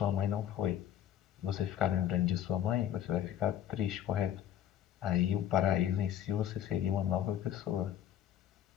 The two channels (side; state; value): right; quieter; 10.8 dB